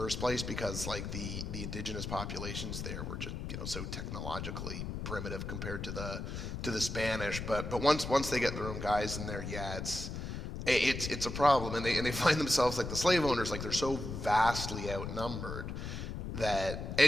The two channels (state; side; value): noise; left; rumble, 5 dB below the sound